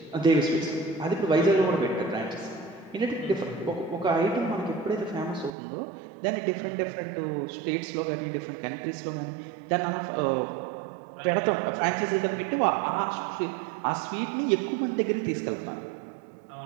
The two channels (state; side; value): drops out; left; at 5.5 s